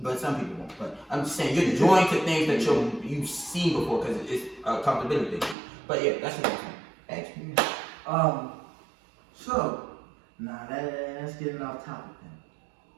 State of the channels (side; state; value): left; drops out; at 5.6 s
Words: But some people won't. But I'm just saying, you're joined to things that you've seen before because it's a comfortability thing. But yeah, that's what I'm saying. Ask me. So, that's getting off topic